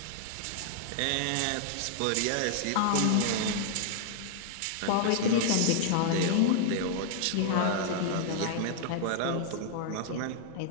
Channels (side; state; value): both; different; correlation 0.00